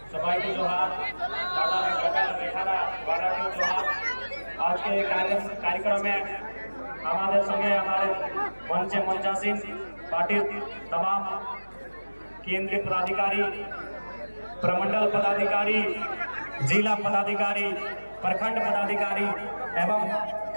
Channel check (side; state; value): both; inverted; correlation -1.00